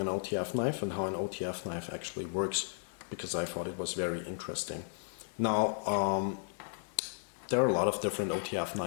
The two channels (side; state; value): right; silent; digital silence